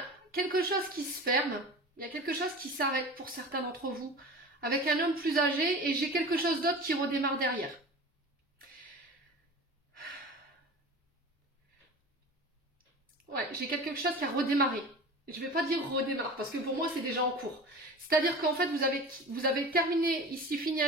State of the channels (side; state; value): both; normal; correlation 0.35